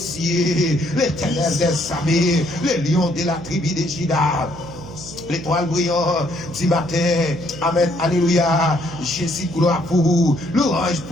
l'éternel des armées, le lion de la tribu de Juda. L'étoile brillante du matin. Amen. Alléluia. Jésus, gloire pour vous. L'orange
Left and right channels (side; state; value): right; noise; hum, 15 dB below the sound